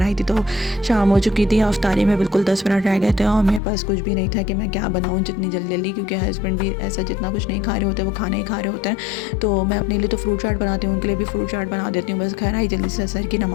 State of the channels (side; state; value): right; drops out; at 3.6 s